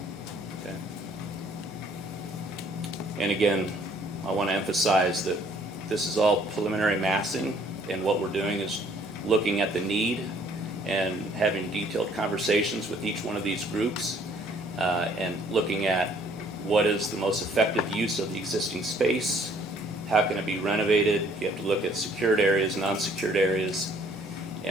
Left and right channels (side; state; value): both; normal; correlation 0.61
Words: Okay. And again, I want to emphasize that this is all preliminary massing, and what we're doing is looking at the need and having detailed conversations with each one of these groups and looking at what is the most effective use of the existing space, how can it be renovated. You have to look at secured areas, non-secured areas,